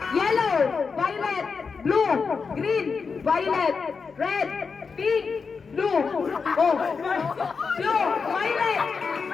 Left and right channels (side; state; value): right; quieter; 5.2 dB